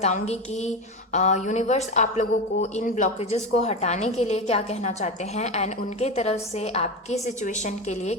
कि यूनिवर्स आप लोगों को इन ब्लॉकेजेस को हटाने के लिए क्या कहना चाहते हैं एंड उनके तरफ से आपकी सिचुएशन के लिए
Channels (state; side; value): normal; both; correlation 0.19